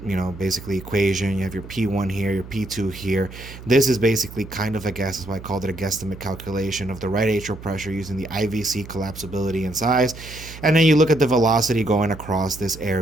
basically equation, you have your P1 here, your P2 here. This is basically kind of a guess. That's why I called it a guesstimate calculation of the right atrial pressure using the IVC collapsibility and size. And then you look at the velocity going across this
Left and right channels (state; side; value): noise; right; hum, 15 dB below the sound